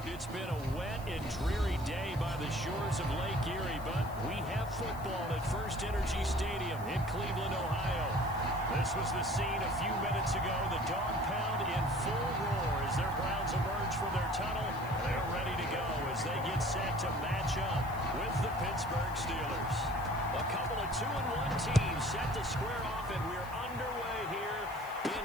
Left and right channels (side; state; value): right; noise; hiss, 20 dB below the sound